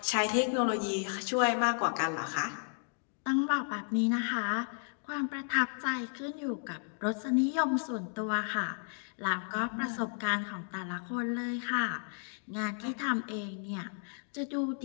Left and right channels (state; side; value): silent; right; 56 dB below the other